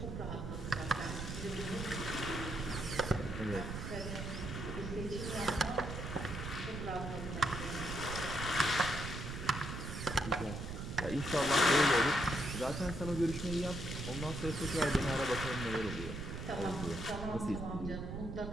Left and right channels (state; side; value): noise; right; rumble, 6 dB below the sound